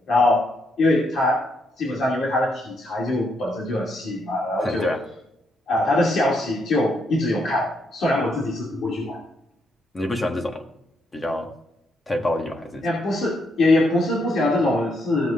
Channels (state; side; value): normal; both; correlation 0.76